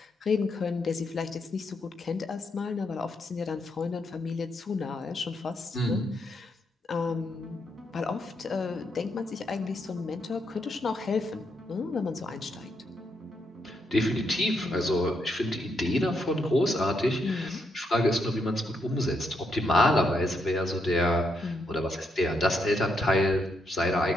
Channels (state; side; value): normal; both; correlation 0.78